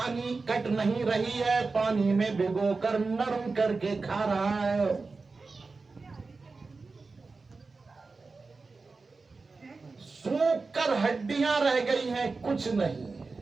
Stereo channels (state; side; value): quieter; left; 4.0 dB